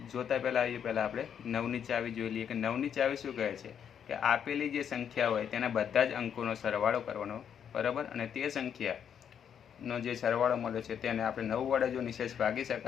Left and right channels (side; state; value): right; quieter; 8.3 dB